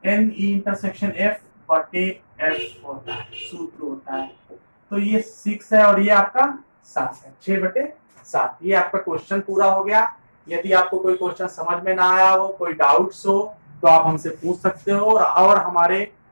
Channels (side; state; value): both; inverted; correlation -1.00